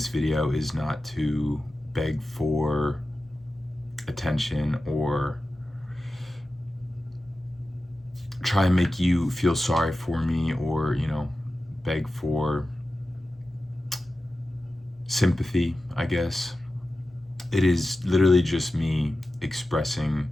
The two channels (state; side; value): normal; both; correlation 0.94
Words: video is not to beg for attention or try and make you feel sorry for me or, beg for sympathy, I guess. It is literally just me expressing